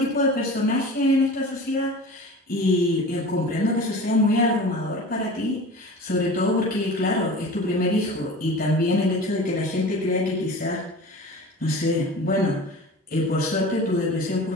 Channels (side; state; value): both; normal; correlation 0.37